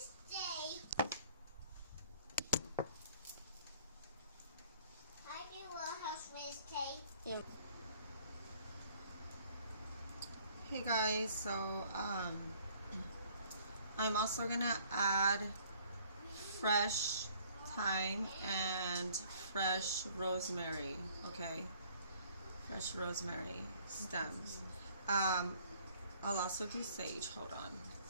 I do Little House Wednesday. Yeah. Hey guys, so I'm also gonna add fresh thyme and fresh rosemary, okay? Fresh rosemary stems. I'll also do sage, hold on.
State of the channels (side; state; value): both; inverted; correlation -0.58